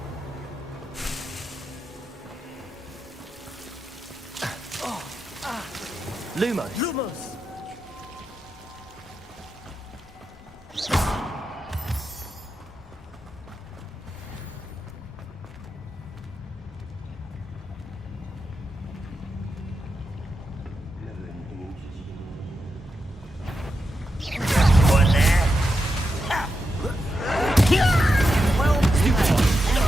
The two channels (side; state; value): both; normal; correlation 0.87